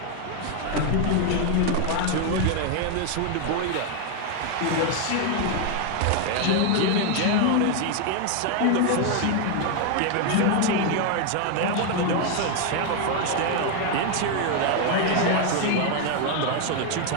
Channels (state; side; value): different; both; correlation 0.01